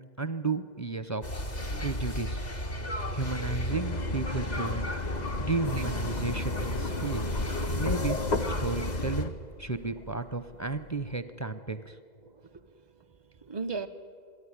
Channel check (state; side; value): late; right; 2.0 ms